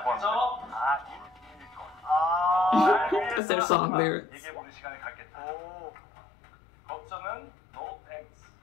먼저 That's their song lyrics. 얘기해보는 시간을 갖겠다. 법정은 no thanks.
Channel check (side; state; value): right; drops out; at 3.4 s